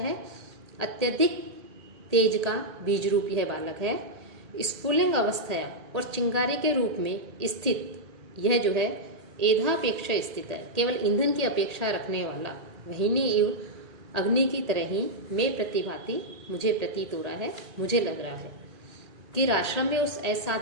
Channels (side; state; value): left; late; 1.8 ms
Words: अत्यधिक तेज का बीज रूप यह बालक है, स्फुलिंग अवस्था और चिंगारी के रूप में स्थित, यह जो है एधापेक्षा स्थित है, केवल ईंधन की अपेक्षा रखने वाला, वहीनी इव अग्नि की तरह ही मैं प्रतिभाति मुझे प्रतीत हो रहा है, मुझे लग रहा है। कि आश्रम में उस